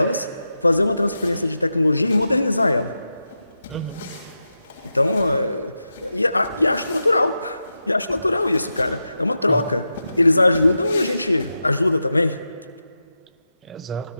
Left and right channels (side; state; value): both; inverted; correlation -0.91